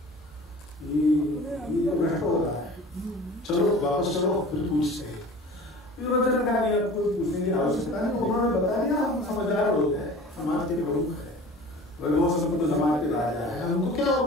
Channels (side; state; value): both; normal; correlation 0.41